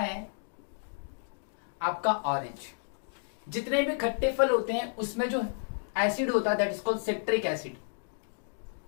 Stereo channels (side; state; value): right; silent; digital silence